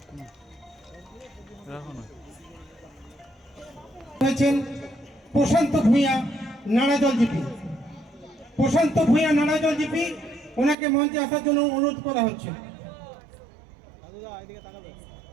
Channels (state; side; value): drops out; left; at 10.8 s